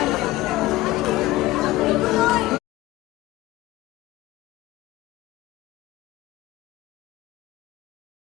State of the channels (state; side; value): quieter; right; 17.6 dB